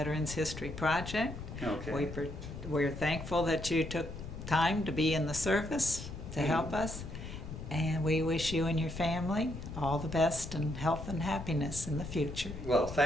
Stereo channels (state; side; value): noise; left; rumble, 9 dB below the sound